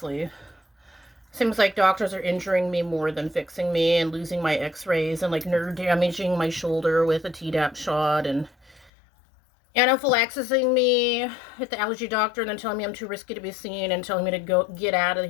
Seems like doctors are injuring me more than fixing me and losing my x-rays and like nerve damaging my shoulder with a Tdap shot and anaphylaxising me at the allergy doctor and then telling me I'm too risky to be seen and telling me to go get out of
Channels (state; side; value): drops out; right; at 8.9 s